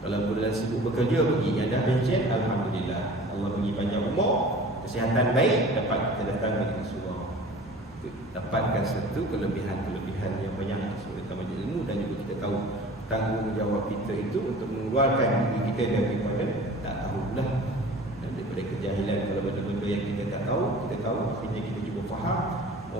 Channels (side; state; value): both; normal; correlation 0.43